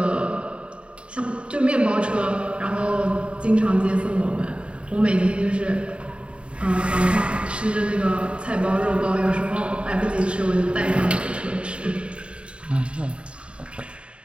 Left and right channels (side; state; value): left; late; 0.057 ms